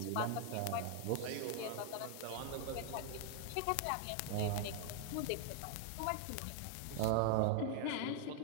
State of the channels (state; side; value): different; both; correlation 0.00